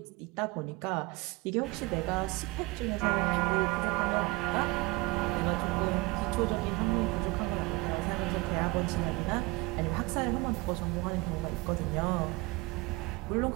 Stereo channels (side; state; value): left; quieter; 23.7 dB